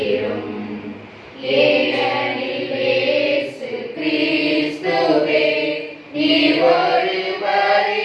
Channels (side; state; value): both; identical; correlation 1.00